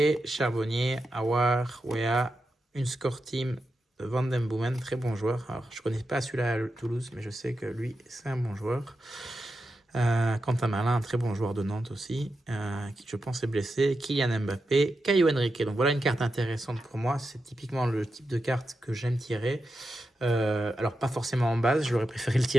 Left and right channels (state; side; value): normal; both; correlation 0.89